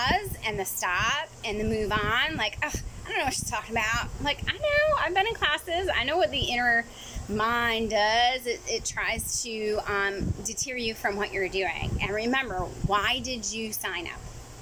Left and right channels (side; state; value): both; identical; correlation 1.00